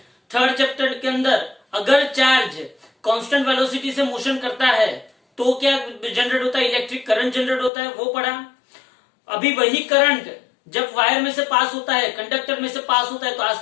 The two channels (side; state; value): right; drops out; at 7.7 s